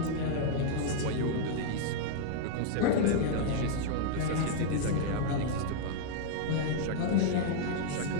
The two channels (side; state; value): both; different; correlation -0.01